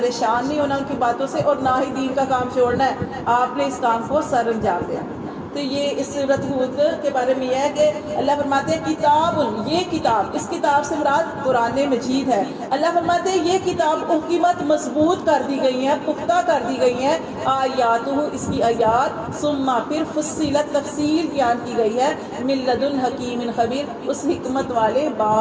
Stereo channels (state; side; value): identical; both; correlation 1.00